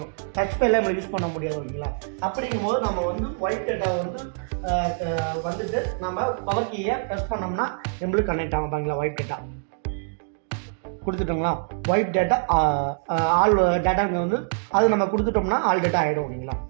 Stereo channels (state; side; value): silent; left; digital silence